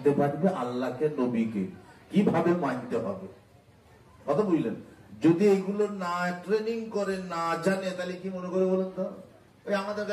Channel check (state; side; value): identical; both; correlation 1.00